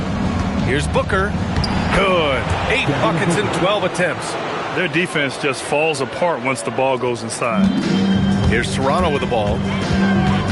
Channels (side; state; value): both; identical; correlation 1.00